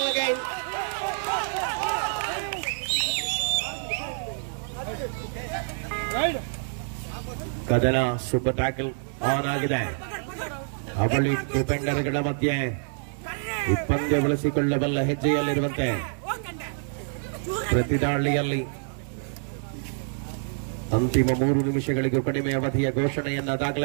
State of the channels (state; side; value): silent; left; digital silence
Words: again. ಕದನ ಸೂಪರ್ ಟ್ಯಾಕಲ್ ಆನ್ ಆಗಿದೆ. ಅವಳಿ ಡಿಫೆಂಡರ್ಗಳ ಮಧ್ಯೆ ಪಂದ್ಯ ಬಳಸಿಕೊಳ್ಳಬಲ್ಲ ಹೆಜ್ಜೆಯಲ್ಲಿರುವಂತೆ ಪ್ರತಿದಾಳಿಯಲ್ಲಿ ಅಂತಿಮ 3 ನಿಮಿಷಗಳಿಗೂ ಕಡಿಮೆ ಅವಧಿಯ ಘೋಷಣೆಯನ್ನ